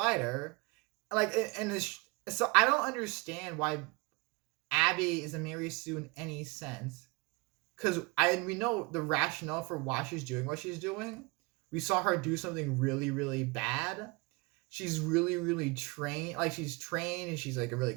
So I don't understand why Abby is a Mary Sue in any sense. Because we know the rationale for why she's doing what she's doing. We saw her do something really, really bad. She's really, really trained. Like, she's trained and she's like a really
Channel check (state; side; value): quieter; left; 27.7 dB